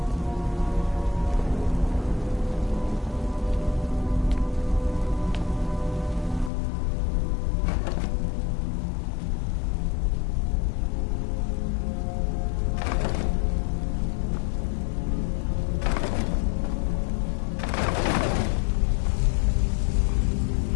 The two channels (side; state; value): right; drops out; at 6.5 s